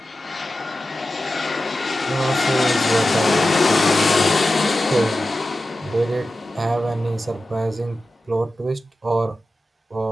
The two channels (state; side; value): normal; both; correlation 0.93